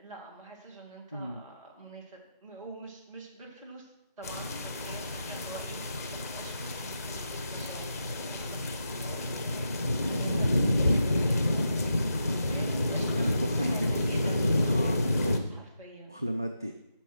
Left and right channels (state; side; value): inverted; both; correlation -0.85